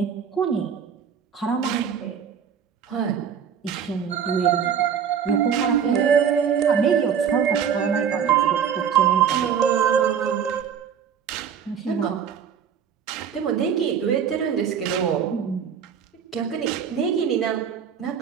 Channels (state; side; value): quieter; left; 7.7 dB